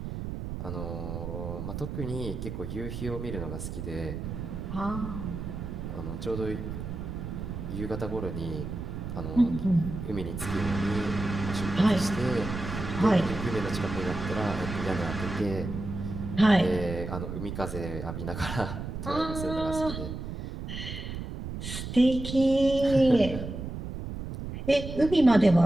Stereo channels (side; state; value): right; noise; rumble, 6 dB below the sound